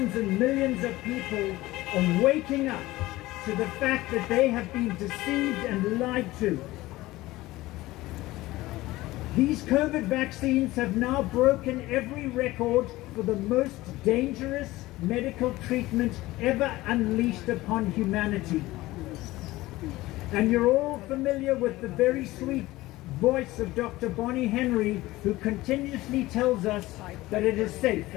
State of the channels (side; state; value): right; quieter; 18.3 dB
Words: and millions of people are waking up to the fact that they have been deceived and lied to. These COVID vaccines have now broken every record for the most dangerous medical treatment ever unleashed upon humanity. And you're all familiar with the very sweet voice of Dr. Bonnie Henry, who continuously tells us that it is safe